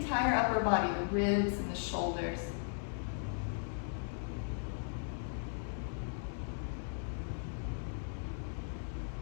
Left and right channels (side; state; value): right; silent; digital silence